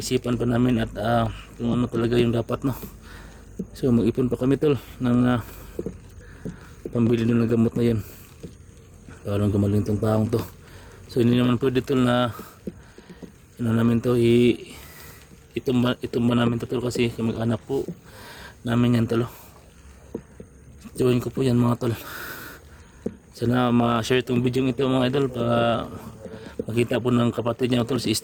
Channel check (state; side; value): identical; both; correlation 1.00